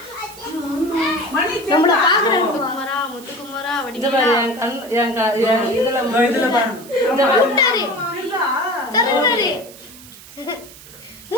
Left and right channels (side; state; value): right; noise; hiss, 19 dB below the sound